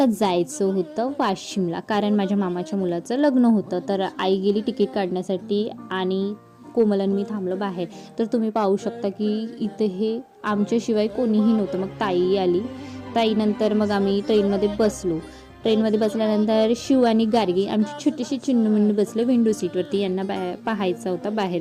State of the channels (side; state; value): both; identical; correlation 1.00